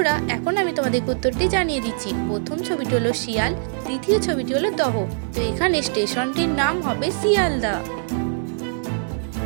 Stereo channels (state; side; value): silent; left; 59 dB below the other